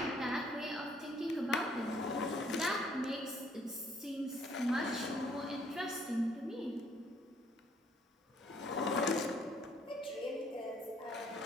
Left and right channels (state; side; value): normal; both; correlation 0.64